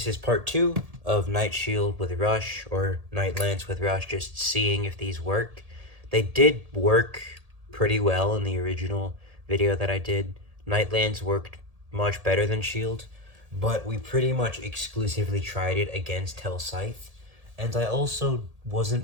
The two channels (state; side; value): late; left; 1.8 ms